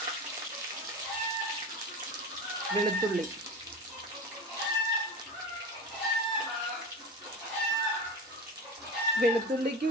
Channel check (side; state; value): both; normal; correlation 0.27